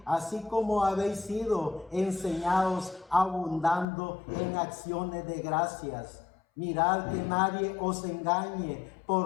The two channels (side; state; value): right; drops out; at 3.9 s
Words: así como habéis sido enseñados, abundando en acciones de gracias. Mirad que nadie os engañe